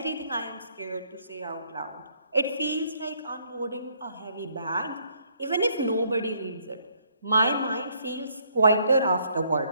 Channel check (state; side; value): inverted; both; correlation -0.68